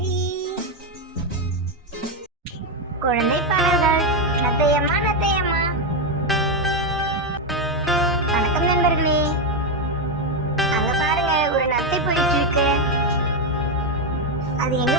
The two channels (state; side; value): normal; both; correlation 0.06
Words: குழந்தை பாடல்கள். நத்தையம்மா நத்தையம்மா. வணக்கம் நண்பர்களே. அங்க பாருங்க, ஒரு நத்தை போயிட்டு இருக்கு. அது எங்க